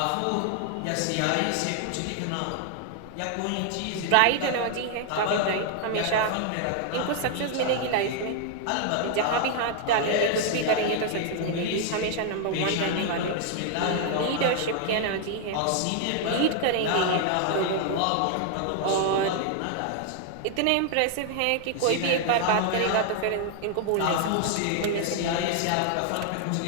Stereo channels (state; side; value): different; both; correlation 0.00